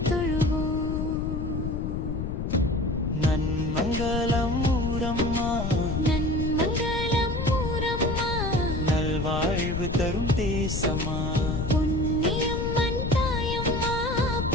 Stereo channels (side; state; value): left; noise; rumble, 2 dB below the sound